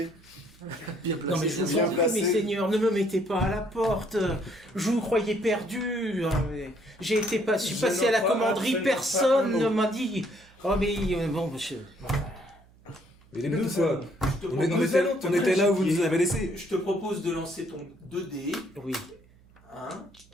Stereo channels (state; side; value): noise; right; hum, 28 dB below the sound